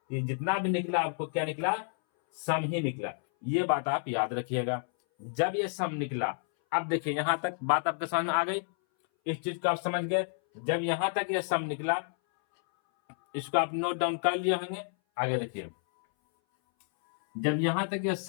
ये जितना भी निकला आपको क्या निकला, सम ही निकला। ये बात आप याद रखिएगा जब ये सम निकला। अब देखिए यहां तक बात आपके समझ में आ गई, इस चीज को आप समझ गए। जब यहां तक ये सम निकला, इसको आप नोट डाउन कर लिए होंगे। आगे देखिए, जब यहां तक ये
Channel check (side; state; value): right; silent; 58 dB below the other